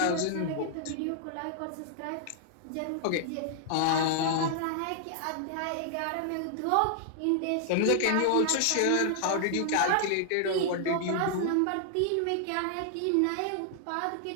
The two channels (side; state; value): both; different; correlation -0.01